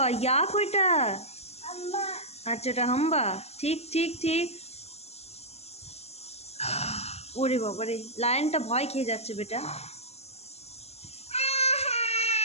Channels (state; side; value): late; right; 0.30 ms